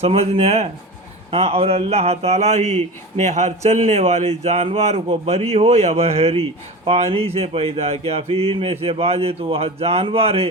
سمجھنے ہے؟ ہاں. اور اللہ تعالیٰ ہی نے ہر چلنے والے جانور کو بری ہو یا بحری پانی سے پیدا کیا. پھر ان میں سے بعض تو وہ جانور ہے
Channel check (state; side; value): normal; both; correlation 0.30